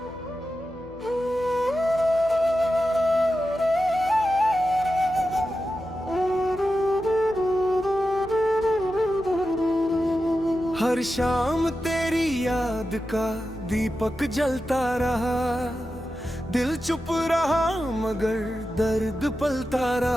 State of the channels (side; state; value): left; noise; hum, 19 dB below the sound